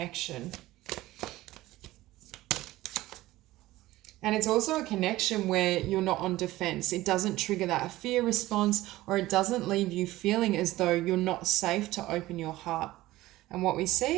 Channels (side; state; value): left; quieter; 17.1 dB